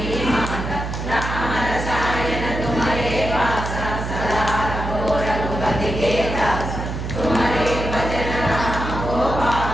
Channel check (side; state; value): right; noise; hum, 5 dB below the sound